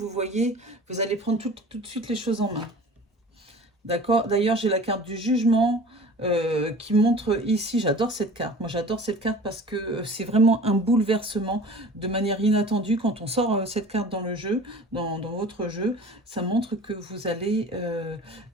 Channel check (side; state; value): both; normal; correlation 0.42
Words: voyez, vous allez prendre tout de suite les choses en main. D'accord. D'ailleurs, j'ai la carte du jugement qui montre ici, j'adore cette carte. Moi, j'adore cette carte parce que c'est vraiment un bouleversement de manière inattendue. Quand on sort cette carte dans le jeu, dans votre jeu, ça montre que vous allez...